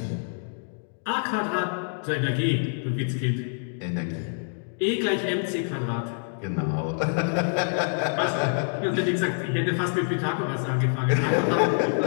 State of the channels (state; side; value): silent; right; digital silence